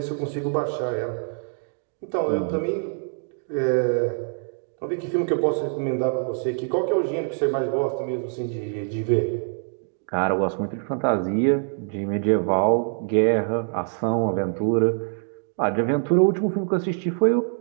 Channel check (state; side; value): silent; left; 61 dB below the other